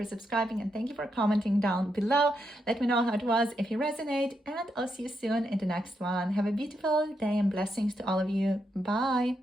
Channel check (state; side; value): normal; both; correlation 0.82